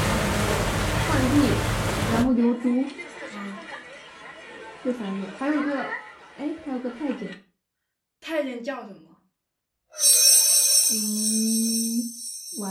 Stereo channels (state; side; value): identical; both; correlation 1.00